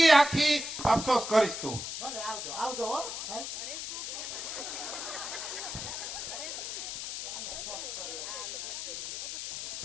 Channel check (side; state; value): left; noise; hiss, 5 dB below the sound